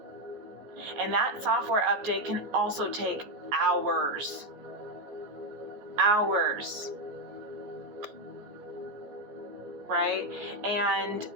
And that software update can also take hours. Hours. Right? And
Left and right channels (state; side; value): late; left; 14 ms